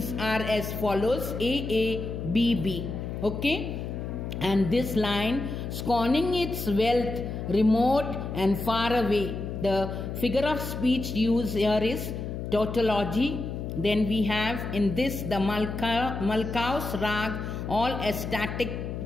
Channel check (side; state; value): left; noise; hum, 5 dB below the sound